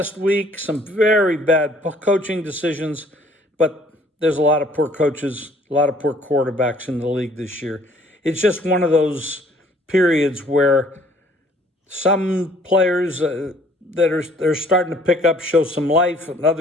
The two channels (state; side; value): normal; both; correlation 0.59